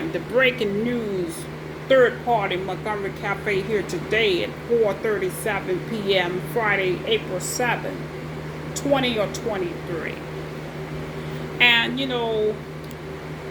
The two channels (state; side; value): identical; both; correlation 1.00